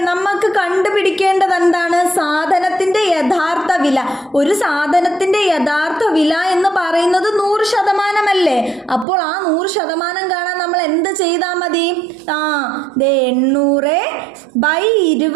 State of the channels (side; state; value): left; drops out; at 9.1 s